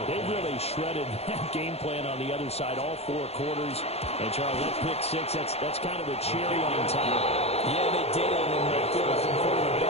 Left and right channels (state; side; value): late; right; 0.30 ms